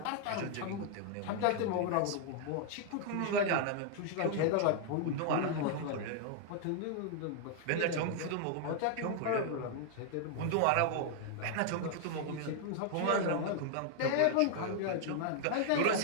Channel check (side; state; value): both; different; correlation 0.00